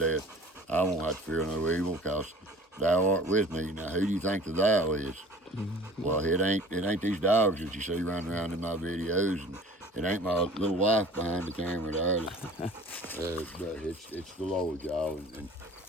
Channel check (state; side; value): normal; both; correlation 0.46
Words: I won't have to fear no evil, cause thou art with me. Now, who do you think the thou is? Well, it ain't these dogs that you see running around in my videos, and it ain't my little wife behind the camera there. But it's the Lord, y'all, and